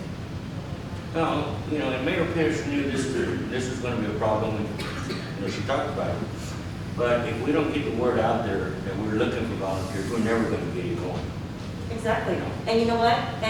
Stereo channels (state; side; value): identical; both; correlation 1.00